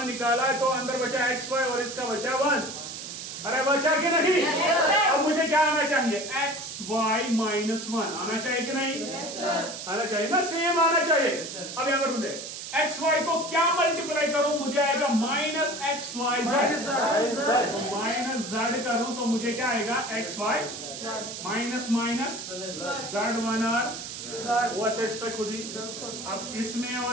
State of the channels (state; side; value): noise; right; hiss, 9 dB below the sound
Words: निकाला है तो अंदर बचा XY और इसका बचा 1। अरे बचा कि नहीं? अब मुझे क्या आना चाहिए? XY -1 आना चाहिए कि नहीं? आना चाहिए ना, सेम आना चाहिए। अब यहाँ पर बोलते XY को क्या मल्टीप्लाई करूं? मुझे आएगा माइनस XYZ। माइनस Z करूं तो मुझे क्या आएगा? XY माइनस माइनस Z1 और वो सेट्स पे खुद ही। अब इसमें